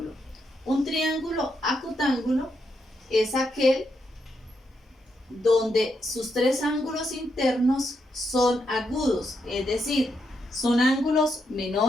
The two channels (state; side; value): normal; both; correlation 0.81